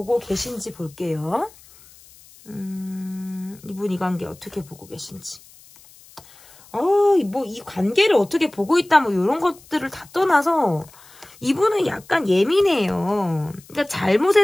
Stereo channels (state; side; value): noise; left; hiss, 24 dB below the sound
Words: 계신지 볼게요. 이분 이 관계 어떻게 보고 계신지. 뭐 이 관계를 어떻게 보고 있다 뭐 이런 것들을 다 떠나서 이분은 약간 예민해요. 그러니까